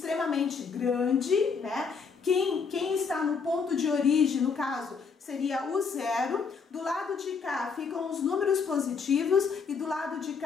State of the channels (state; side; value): quieter; right; 5.5 dB